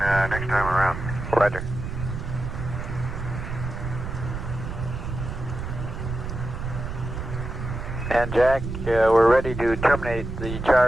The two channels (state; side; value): noise; right; rumble, 6 dB below the sound